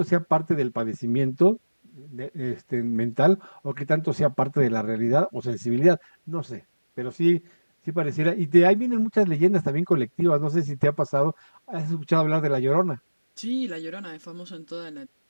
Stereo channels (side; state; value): both; inverted; correlation -1.00